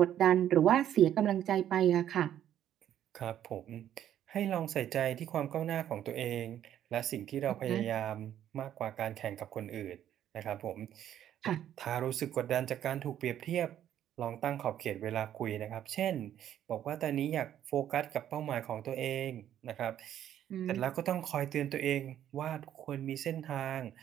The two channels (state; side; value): quieter; left; 10.9 dB